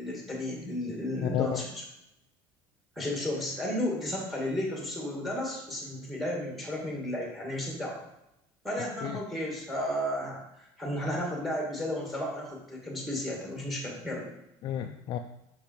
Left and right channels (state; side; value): normal; both; correlation 0.54